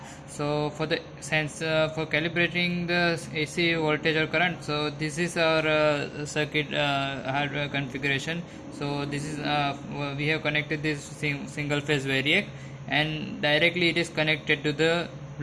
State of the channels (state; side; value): identical; both; correlation 1.00